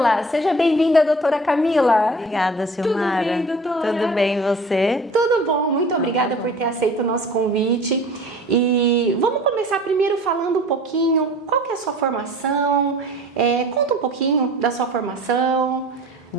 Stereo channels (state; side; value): normal; both; correlation 0.44